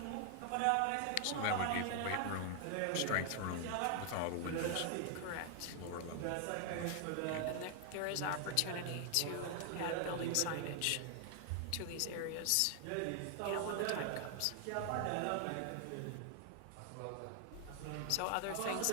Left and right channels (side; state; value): both; different; correlation 0.00